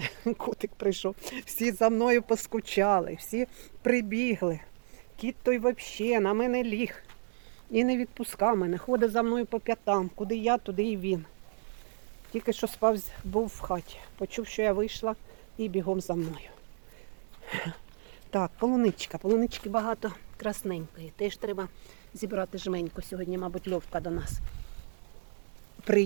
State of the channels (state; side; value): silent; left; 56 dB below the other